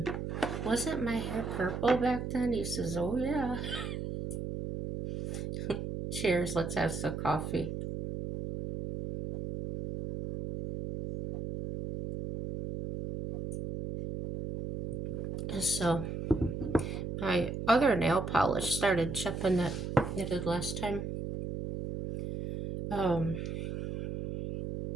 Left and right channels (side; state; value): right; noise; hum, 4 dB below the sound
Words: wasn't my hair purple back then? He says, oh yeah. Cheers, let's have some coffee. And so my other nail polish started chipping that I did last time.